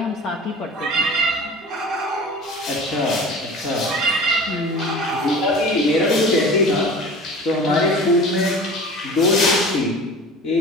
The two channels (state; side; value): normal; both; correlation 0.38